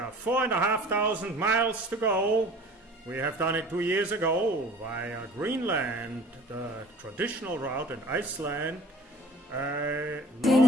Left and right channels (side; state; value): both; normal; correlation 0.48